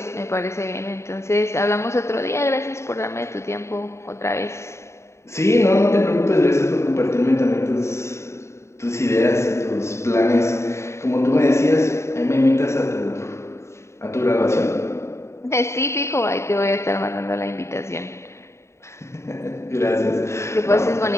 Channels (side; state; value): right; late; 0.13 ms